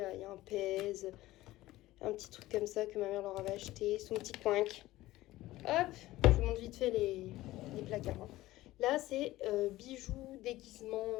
il y a un pèse, un petit truc comme ça que ma mère leur avait acheté, son petit coinc. Hop, je vous montre vite fait les placards. Hein. Là, c'est bijoux, déguisements,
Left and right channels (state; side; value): quieter; right; 16.9 dB